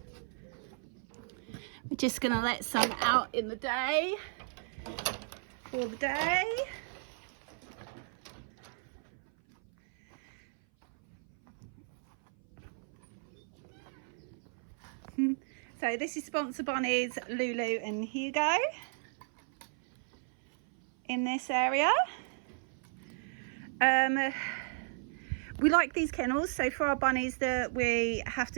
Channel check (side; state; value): left; silent; 55 dB below the other